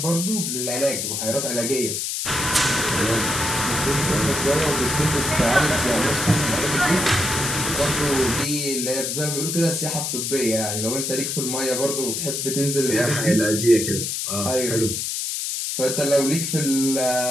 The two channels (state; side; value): noise; left; hiss, 2 dB below the sound